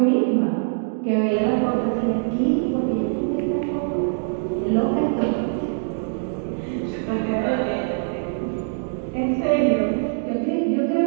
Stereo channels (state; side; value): silent; left; digital silence